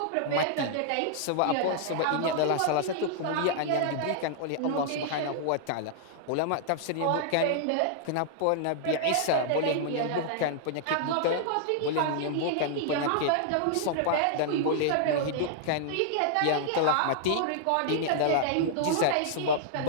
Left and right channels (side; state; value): both; different; correlation -0.01